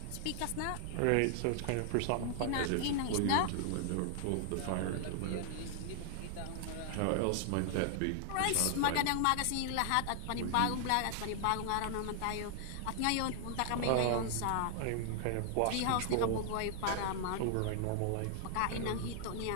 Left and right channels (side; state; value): both; different; correlation 0.00